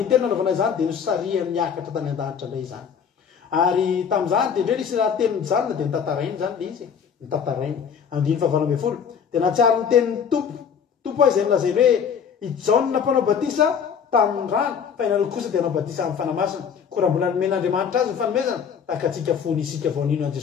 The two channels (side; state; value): right; quieter; 7.2 dB